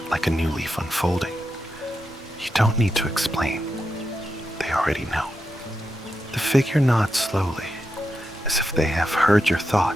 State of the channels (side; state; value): both; normal; correlation 0.87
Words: like a new leaf unfolding. You don't need to explain. They already know. The figure nods slowly, as if they have heard your